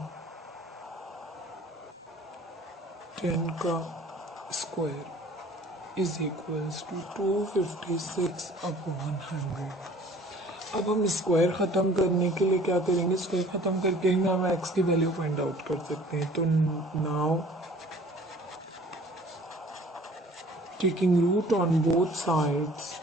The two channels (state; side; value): normal; both; correlation 0.51